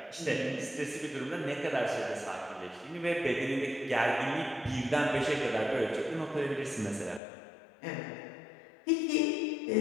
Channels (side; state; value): right; drops out; at 7.2 s